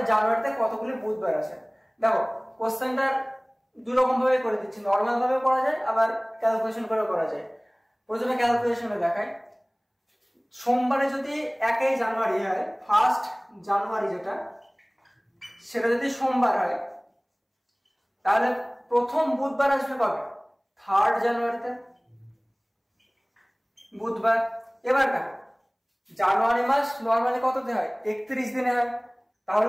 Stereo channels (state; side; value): identical; both; correlation 1.00